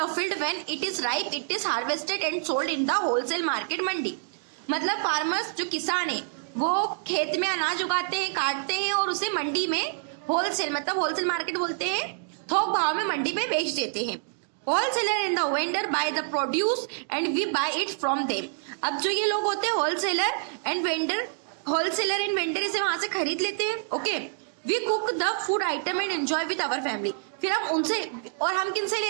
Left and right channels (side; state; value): left; silent; digital silence